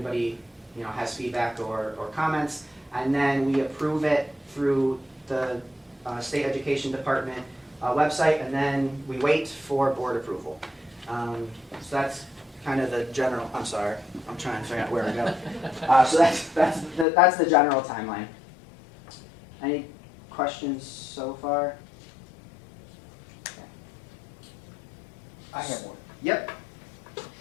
you know, has feedback or comments, and then we approve it through the State Education Department website, and then we wait for board approval. So that's kind of the general, I'm sorry, I'm trying to figure out where to go. So that's the general timeline. Any questions so far? I have one. Yep.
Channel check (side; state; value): right; drops out; at 17.1 s